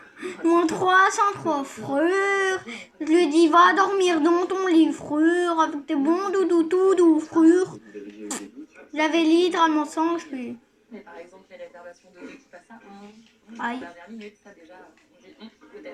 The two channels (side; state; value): both; identical; correlation 1.00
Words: Mon 303 frère, je lui dis va dormir dans ton lit frère, avec tes bons doudous tout doux frère. Vous avez déjà eu des doutes sur J'avais littéralement 100 HP. Mais par exemple, les réservations de qui passent à 1, Aïe. dernière minute, ça déjà, on dit